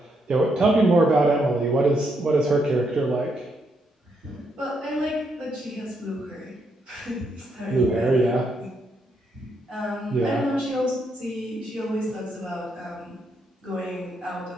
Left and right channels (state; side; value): normal; both; correlation 0.77